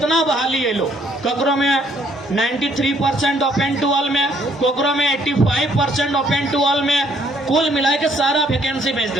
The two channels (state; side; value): normal; both; correlation 0.66